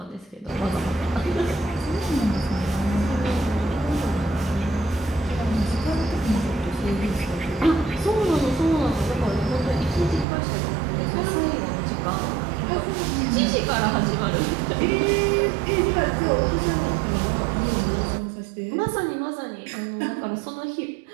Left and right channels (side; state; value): left; drops out; at 10.2 s